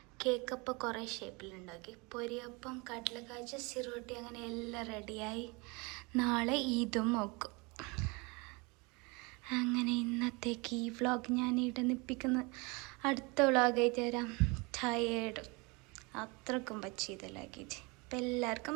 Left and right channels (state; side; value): quieter; left; 27.8 dB